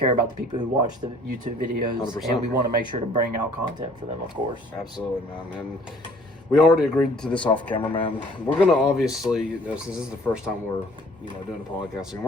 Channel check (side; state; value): both; normal; correlation 0.55